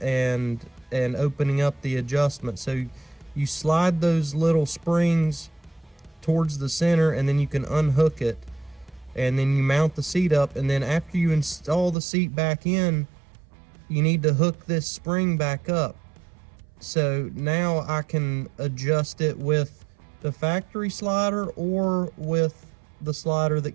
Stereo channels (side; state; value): left; drops out; at 12.0 s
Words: and opening up the adjustment. So you slide those little springs towards the center, and then you can unhook it, and then you mount the seat up. And then after you install the seat back in, you need to hook this spring back up. So now I can adjust it with the factory slider or with the slider that